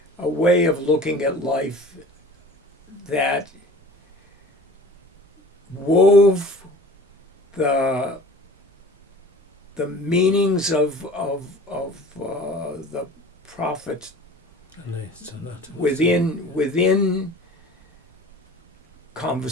a way of looking at life that wove the meanings of the Prophet within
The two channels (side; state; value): both; normal; correlation 0.43